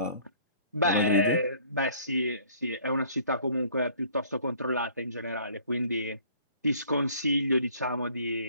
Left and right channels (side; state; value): both; inverted; correlation -0.55